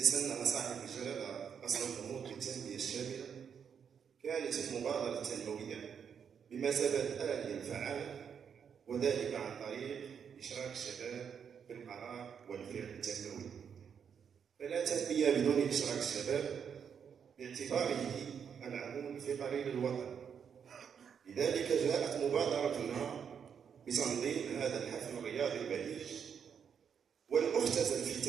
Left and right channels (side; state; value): left; quieter; 7.4 dB